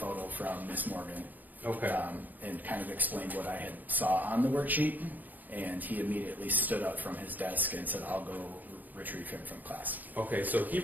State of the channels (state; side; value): late; left; 0.083 ms